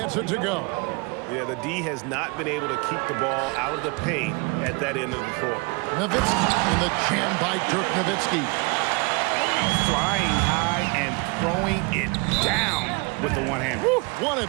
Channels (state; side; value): quieter; left; 29.3 dB